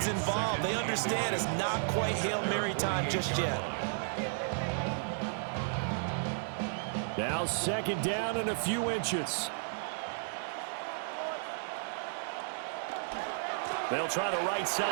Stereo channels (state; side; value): silent; left; 55 dB below the other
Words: involved. They understand it's not quite Hail Mary time just yet. Now second down and a few inches. They'll try the right